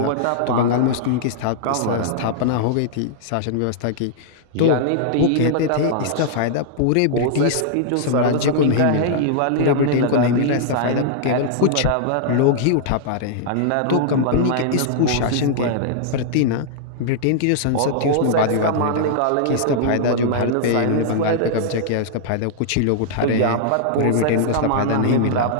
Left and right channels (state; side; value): different; both; correlation -0.01